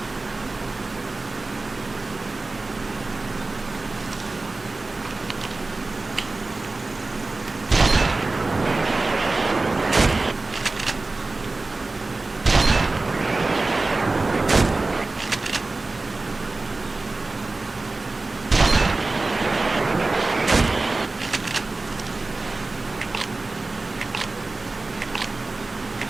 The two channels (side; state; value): left; quieter; 3.3 dB